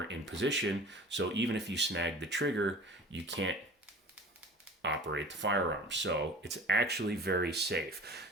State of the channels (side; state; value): both; normal; correlation 0.41